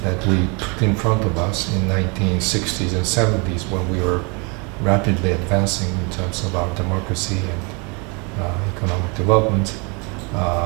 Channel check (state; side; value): quieter; left; 31.6 dB